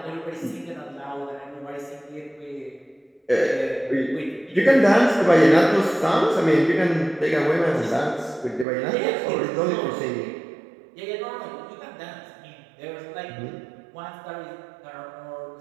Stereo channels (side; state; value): left; drops out; at 8.7 s